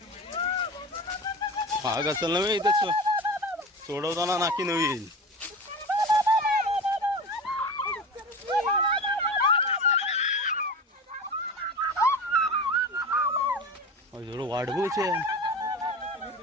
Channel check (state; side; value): normal; both; correlation 0.30